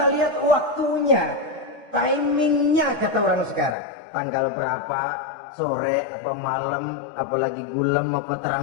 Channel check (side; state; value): right; drops out; at 3.8 s